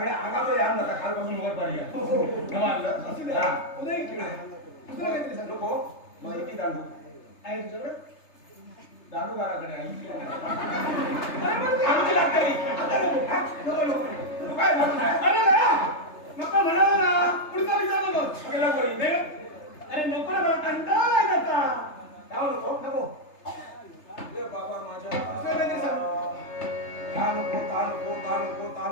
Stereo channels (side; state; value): right; late; 3.3 ms